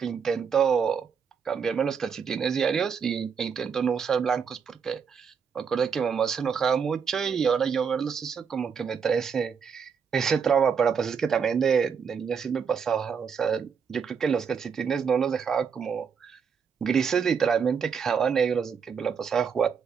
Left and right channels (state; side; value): quieter; left; 6.5 dB